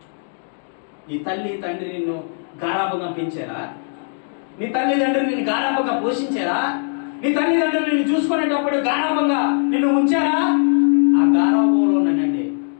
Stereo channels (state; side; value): silent; right; digital silence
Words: నీ తల్లి తండ్రి నిన్ను గారాబంగా పెంచారా? నీ తల్లిదండ్రులు నిన్ను గారాబంగా పోషించారా? నీ తల్లిదండ్రులు నిన్ను చూసుకునేటప్పుడు గారాబంగా నిన్ను ఉంచారా? ఆ గారాబంలోనండి